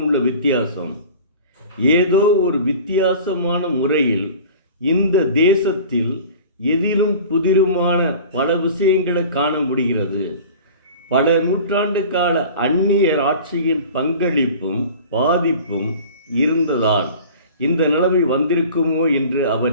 உள்ள வித்தியாசம் ஏதோ ஒரு வித்தியாசமான முறையில் இந்த தேசத்தில் எதிலும் புதிருமான பல விஷயங்களை காண முடிகிறது. பல நூற்றாண்டு கால அந்நியர் ஆட்சியின் பங்களிப்பும் பாதிப்பும் இருந்ததால் இந்த நிலைமை வந்திருக்குமோ என்று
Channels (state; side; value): inverted; both; correlation -0.41